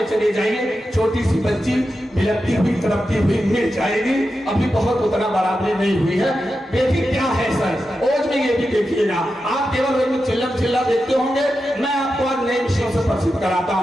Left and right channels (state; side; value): normal; both; correlation 0.90